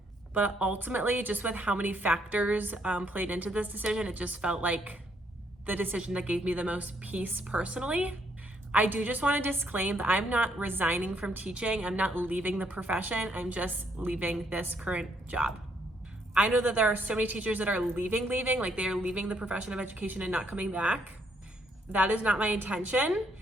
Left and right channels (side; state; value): both; normal; correlation 0.71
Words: But ultimately, just with how many factors played into this decision, it just felt like the decision that gave me the most peace personally. I do just want to disclaim that I'm not resigning from teaching. I'm not leaving the profession. I'm just leaving this current job. I know that there are so many teachers that are leaving, like they are leaving the profession of education and not coming back. That is not my intention.